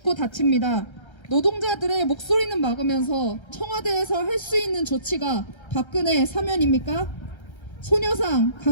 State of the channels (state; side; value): late; right; 1.3 ms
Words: 다칩니다. 노동자들의 목소리는 막으면서 청와대에서 할 수 있는 조치가 박근혜 사면입니까? 소녀상,